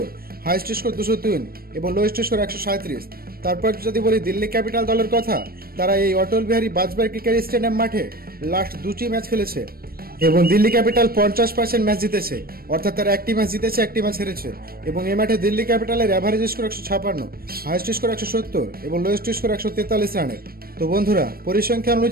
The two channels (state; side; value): late; left; 0.44 ms